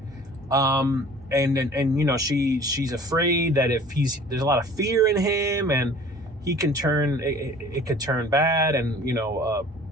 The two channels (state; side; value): normal; both; correlation 0.48